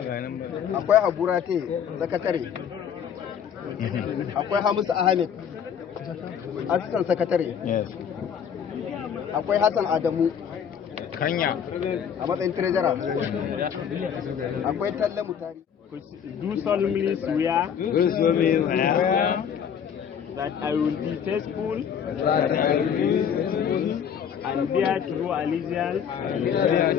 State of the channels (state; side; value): quieter; right; 8.0 dB